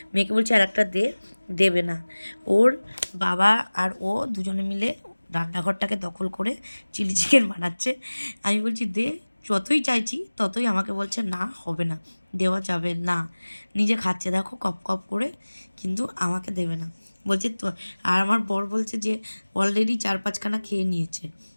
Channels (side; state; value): both; inverted; correlation -1.00